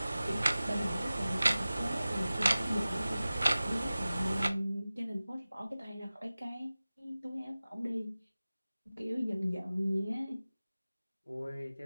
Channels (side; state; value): both; inverted; correlation -0.97